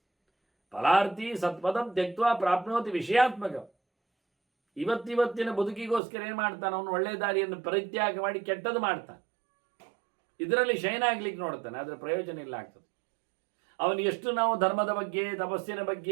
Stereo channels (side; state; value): left; drops out; at 6.0 s